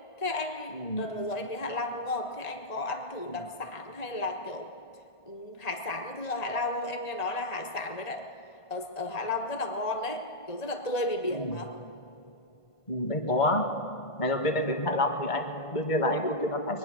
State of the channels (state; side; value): late; right; 1.5 ms